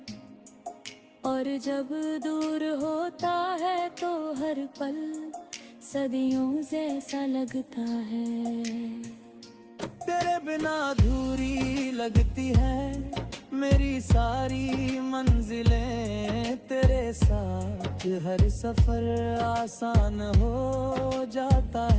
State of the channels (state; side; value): identical; both; correlation 1.00